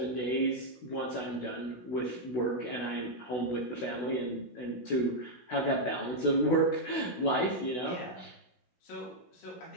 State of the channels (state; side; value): late; right; 16 ms